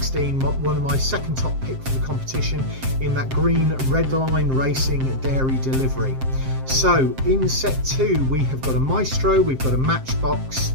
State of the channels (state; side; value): late; left; 7.6 ms